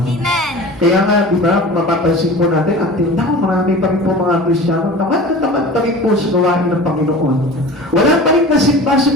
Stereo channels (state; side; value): normal; both; correlation 0.37